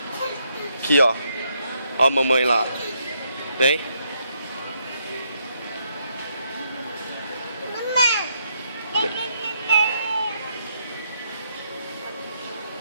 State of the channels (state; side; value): inverted; both; correlation -0.76